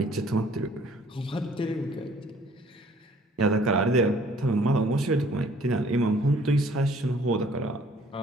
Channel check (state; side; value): normal; both; correlation 0.57